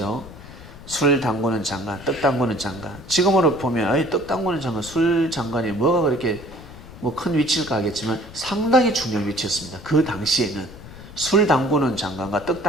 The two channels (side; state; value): left; noise; rumble, 16 dB below the sound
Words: 술 담그는 장관, 떡 담그는 장관. 지금으로 보면 떡 담그는 장관, 술 장관이 뭐가 그렇게 뭐 큰 위치일까 하겠지만 상당히 중요한 위치였습니다. 그 당시에는 술 담그는 장관과 떡